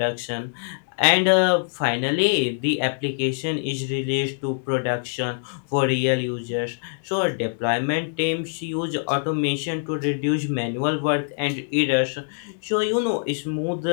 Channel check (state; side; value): silent; right; digital silence